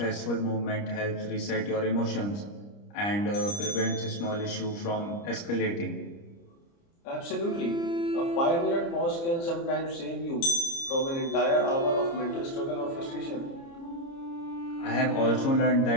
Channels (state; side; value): late; right; 30 ms